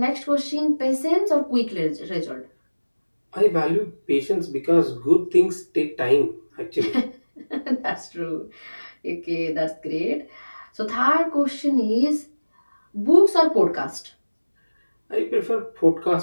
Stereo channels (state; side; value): inverted; both; correlation -1.00